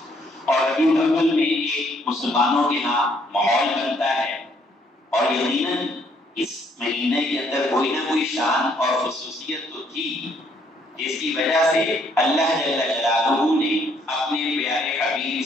اور ربیع الاول میں ایک مسلمانوں کے ہاں ماحول بنتا ہے، اور یقیناً اس مہینے کے اندر کوئی نہ کوئی شان اور خصوصیت تو تھی، جس کی وجہ سے اللہ جل جلالہ نے اپنے پیارے حبیب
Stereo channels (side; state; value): both; normal; correlation 0.68